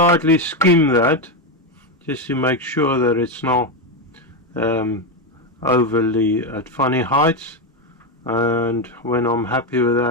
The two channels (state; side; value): normal; both; correlation 0.09